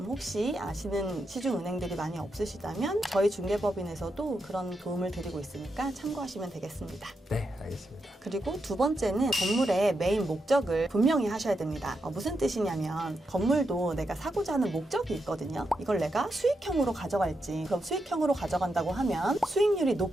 아시는 시중은행들이 많이 없으시다면 저희 중개법인에서도 그런 도움을 드리고 있으니까 참고하시면 되겠습니다. 네, 알겠습니다. 그리고 두 번째는 건물의 메인 목적을 분명히 하셔야 됩니다. 무슨 뜻이냐면 건물도 내가 사고자 하는 목적이 있거든요. 이걸 내가 수익형으로 가져갈지, 그럼 수익형으로 가져간다고 하면 수익률이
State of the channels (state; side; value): normal; both; correlation 0.84